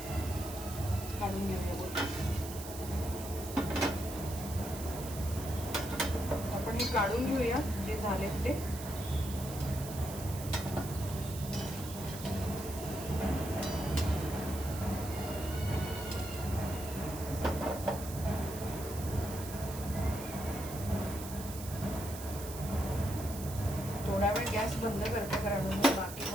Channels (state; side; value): noise; right; hiss, 11 dB below the sound